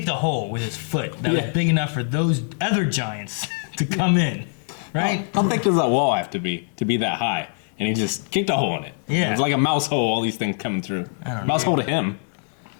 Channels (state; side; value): silent; right; 63 dB below the other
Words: a hole with his foot that was big enough for those other giants to come in, right? How thick does that wall have to be that high? And he just kicked a hole in it. Yeah. It's like a mouse hole, all these things coming through. I don't know. Mouse hole to him.